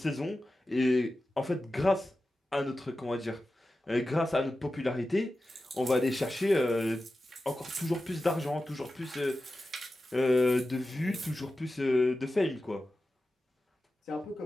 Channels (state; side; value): normal; both; correlation 0.93